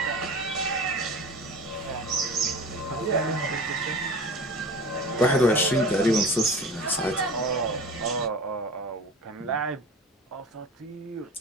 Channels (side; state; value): both; normal; correlation 0.36